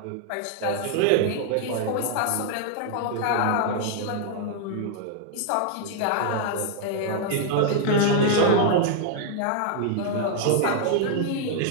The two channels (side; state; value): both; different; correlation 0.00